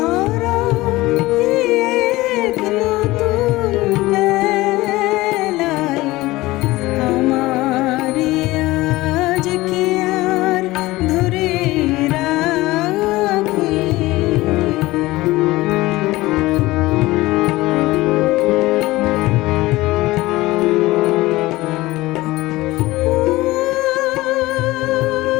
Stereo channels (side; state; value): right; quieter; 19.1 dB